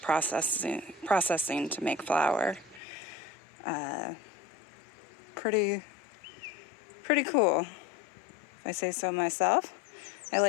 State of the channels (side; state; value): right; drops out; at 2.8 s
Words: processing to make flour. Pretty cool, if I say so myself. I